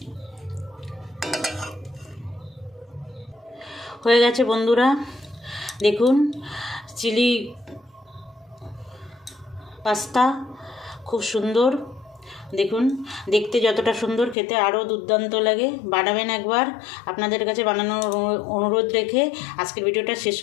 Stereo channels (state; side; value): drops out; right; at 14.4 s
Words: হয়ে গেছে বন্ধুরা, দেখুন চিলি পাস্তা খুব সুন্দর। দেখুন দেখতে যতটা সুন্দর, খেতে আরও দুর্দান্ত লাগে। বানাবেন একবার, আপনাদের কাছে বানানোর অনুরোধ রেখে আজকের ভিডিওটা শেষ